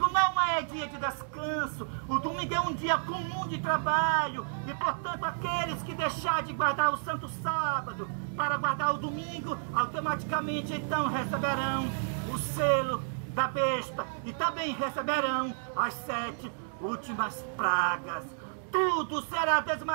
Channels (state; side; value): silent; left; digital silence